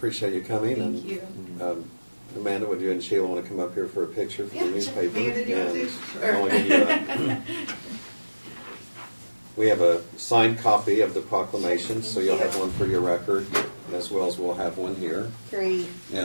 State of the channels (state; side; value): inverted; both; correlation -1.00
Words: you coming. Thank and, you. Amanda, would you and Sheila want to come up here for a picture for Yeah, the newspaper? Amanda, do you want to? And I'll give you that. We have a signed copy of the proclamation, so you'll have one for your record, as well as we'll have one here. Great.